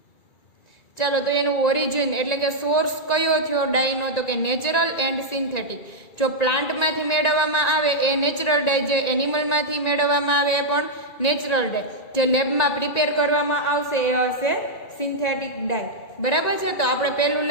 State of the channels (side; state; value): right; late; 1.9 ms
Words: ચાલો તો એનું ઓરિજિન એટલે કે સોર્સ કયો થયો ડાયનો? તો કે નેચરલ એન્ડ સિન્થેટિક. જો પ્લાન્ટમાંથી મેળવવામાં આવે એ નેચરલ ડાય, જે એનિમલમાંથી મેળવવામાં આવે એ પણ નેચરલ ડાય, જે લેબમાં પ્રિપેર કરવામાં આવશે એ હશે સિન્થેટિક ડાય, બરાબર છે. તો આપણે